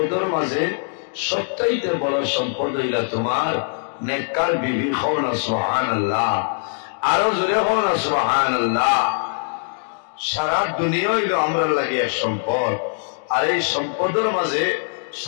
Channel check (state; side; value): silent; right; digital silence